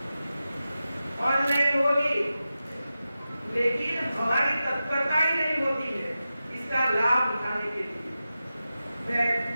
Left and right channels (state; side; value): inverted; both; correlation -0.93